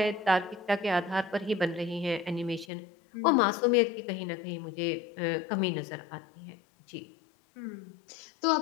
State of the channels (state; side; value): drops out; right; at 2.7 s